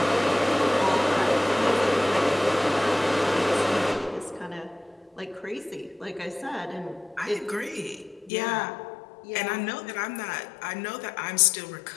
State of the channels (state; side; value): drops out; right; at 8.3 s